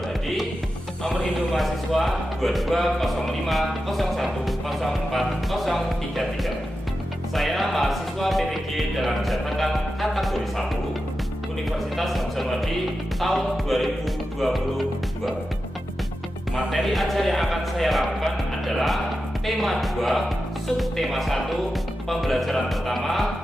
Hadi. Nomor induk mahasiswa 2205010433. Saya mahasiswa PTG dalam jabatan kategori 1 Universitas Hamzahwadi tahun 2022. Materi ajar yang akan saya lakukan adalah tema 2, subtema 1, pembelajaran pertama,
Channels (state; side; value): normal; both; correlation 0.91